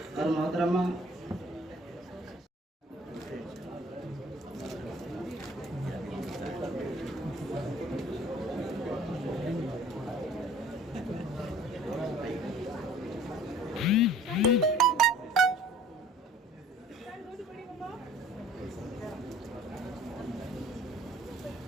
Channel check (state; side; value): normal; both; correlation 0.50